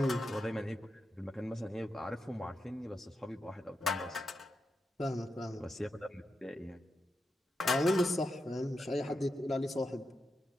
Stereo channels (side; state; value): both; normal; correlation 0.87